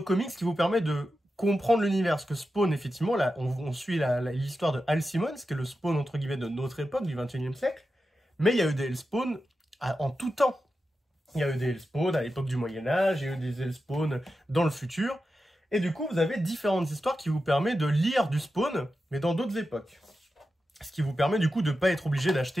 comics qui vous permettent de comprendre l'univers. Parce que Spawn, effectivement, là, on suit l'histoire de Al Simmons, qui est le Spawn, entre guillemets, de notre époque, du 21e siècle, mais il y a eu des Elseworlds en tout temps. Il y a eu des Elseworlds à l'époque du Moyen-Âge, il y a eu des Elseworlds dans le futur. Et du coup, vous avez différentes histoires qui vous permettent de lire du Spawn, mais dans d'autres époques. Ce qui vous permet du coup de ne pas être obligé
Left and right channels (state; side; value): normal; both; correlation 0.91